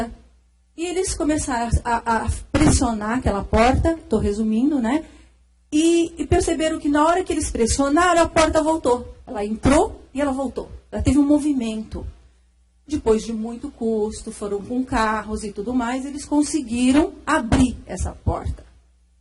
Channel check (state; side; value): identical; both; correlation 1.00